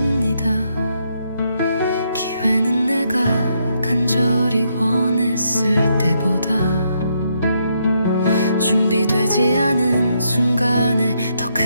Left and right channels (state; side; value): inverted; both; correlation -0.76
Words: 기회는 내가 간절히 원했을 때보다 준비되지 않은 순간에 더